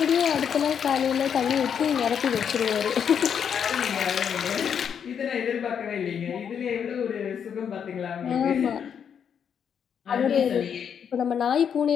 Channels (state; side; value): quieter; right; 7.8 dB